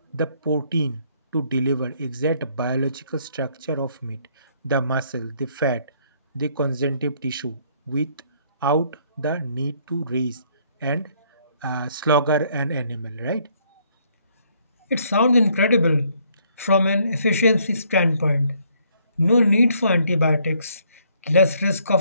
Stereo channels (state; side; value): inverted; both; correlation -0.67